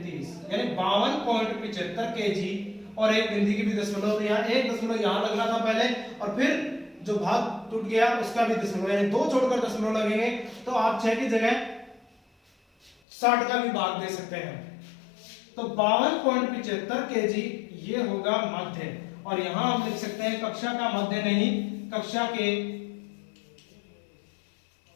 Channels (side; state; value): right; drops out; at 13.0 s